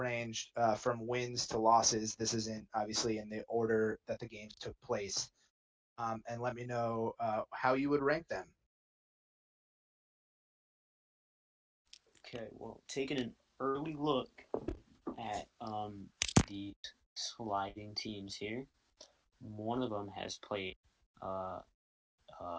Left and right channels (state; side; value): identical; both; correlation 1.00